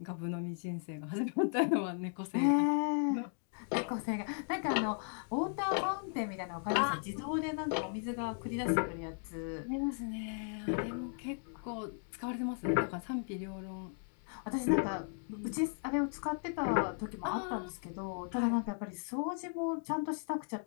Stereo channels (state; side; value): silent; right; 54 dB below the other